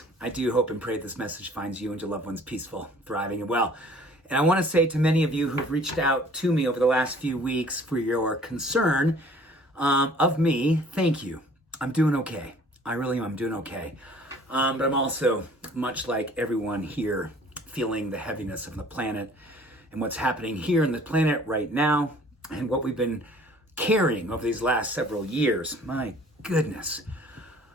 I do hope and pray this message finds you and your loved ones peaceful, thriving, and well. And I want to say to many of you who've reached out to me over the last few weeks for your concern of me, thank you. I'm doing okay. I really am. I'm doing okay. But I'm also, much like everyone here, feeling the heaviness of the planet and what's happening here in the planet right now and what we've been carrying over these last several years. My goodness.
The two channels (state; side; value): normal; both; correlation 0.52